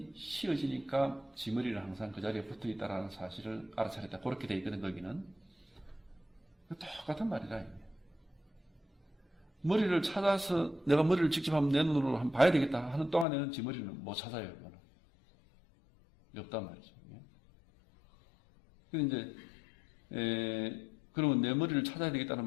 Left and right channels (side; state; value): right; drops out; at 13.2 s